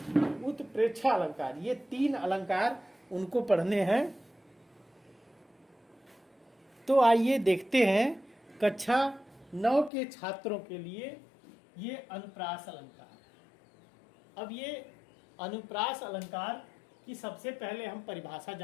उत्प्रेक्षा अलंकार, ये 3 अलंकार उनको पढ़ने हैं। तो आइए देखते हैं कक्षा 9 के छात्रों के लिए ये अनुप्रास अलंकार। अब ये अनुप्रास अलंकार की सबसे पहले हम परिभाषा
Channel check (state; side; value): drops out; right; at 9.9 s